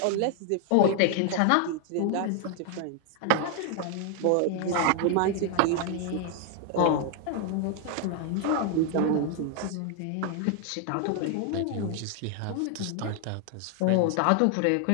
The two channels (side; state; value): both; different; correlation 0.00